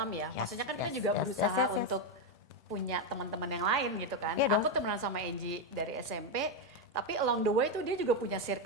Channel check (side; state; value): both; normal; correlation 0.06